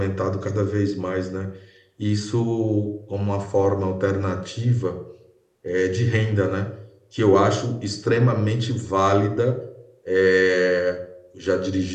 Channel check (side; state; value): both; identical; correlation 1.00